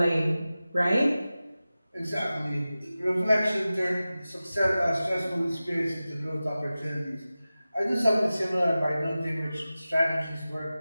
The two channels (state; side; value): inverted; both; correlation -0.95